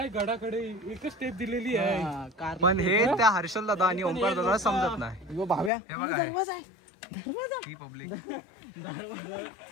गडाकडे एकच स्टेप दिलेली आहे पण हे त्या हर्षल दादा आणि ओंकार दादा समजत नाही. भाव्या हे बघा ही पब्लिक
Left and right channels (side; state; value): right; drops out; at 5.7 s